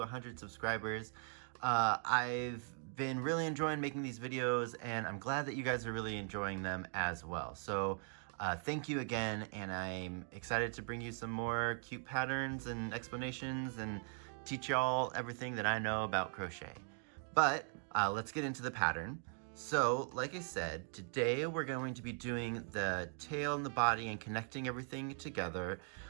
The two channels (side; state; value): left; silent; 51 dB below the other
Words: subscribers. I've been really enjoying making these videos, and I'm glad that you guys are really enjoying them as well. So thank you again, and I'm excited to bring you some more cute patterns and explanations and teach y'all everything that I know about crochet. But let's get into the pattern. So like I said, today we're going to be doing the tail and the body and connecting everything together,